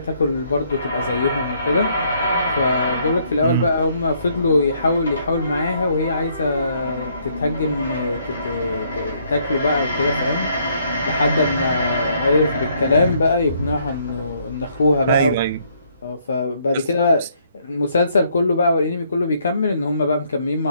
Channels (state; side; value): inverted; both; correlation -0.69